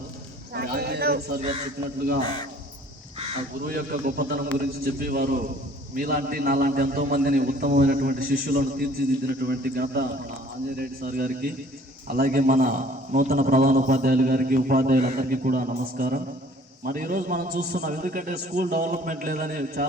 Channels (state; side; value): normal; both; correlation 0.54